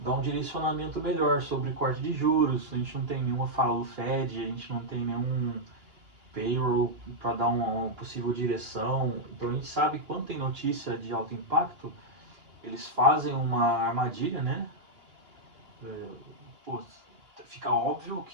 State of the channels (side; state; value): left; late; 2.8 ms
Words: um direcionamento melhor sobre corte de juros. A gente não tem nenhuma fala do Fed, a gente não tem nenhum payroll para dar uma possível direção. Então a gente sabe que quando tem notícia de alto impacto, eles fazem uma armadilha, né? Pô, fica óbvio